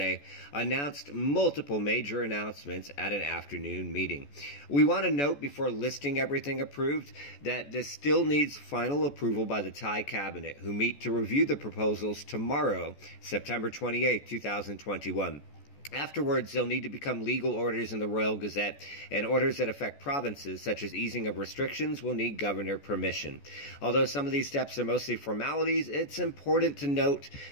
announced multiple major announcements at an afternoon meeting. We want to note before listing everything approved that this still needs final approval by the Thai cabinet, who meet to review the proposals tomorrow, September 28, 2021. Afterwards, they'll need to become legal orders in the Royal Gazette, and orders that affect provinces, such as easing of restrictions, will need governor permission. Although some of these steps are mostly formalities, it's important to note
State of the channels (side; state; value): right; late; 14 ms